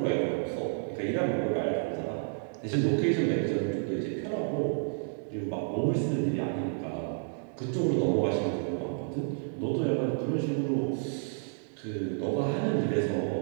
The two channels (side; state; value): left; silent; digital silence